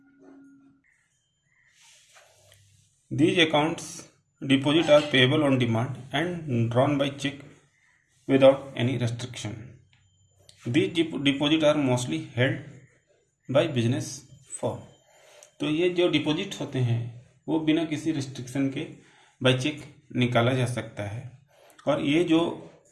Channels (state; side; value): identical; both; correlation 1.00